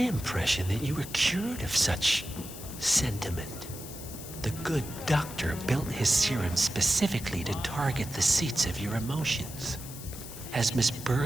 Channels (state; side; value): noise; left; hiss, 13 dB below the sound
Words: that you were cured of such sentiment. The good doctor built his serum specifically to target the seats of your emotions. Has Miss